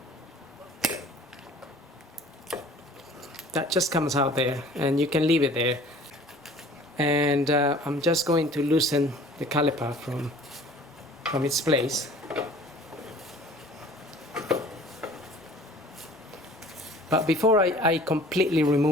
That just comes out there, and you can leave it there. And I'm just going to loosen the caliper from its place. But before I completely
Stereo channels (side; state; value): both; normal; correlation 0.49